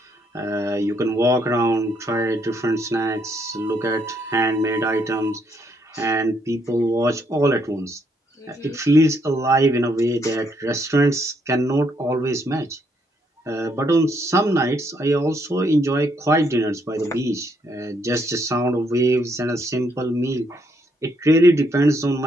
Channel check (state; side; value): normal; both; correlation 0.73